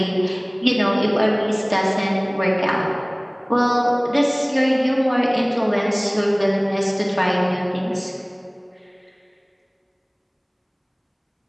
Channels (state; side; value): identical; both; correlation 1.00